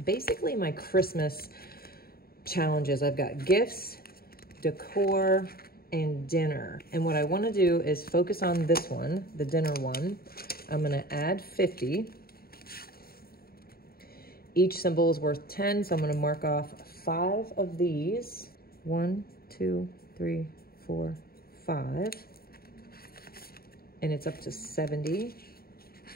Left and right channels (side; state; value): right; late; 0.44 ms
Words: basically my Christmas challenges. I've got gifts, decor, and dinner. And what I want to do is focus on this one, the dinner one. I'm going to add 50. Each symbol is worth 10, so I'm going to mark off 5 of these. 1, 2, 3, 4, 5. And it's up to 70.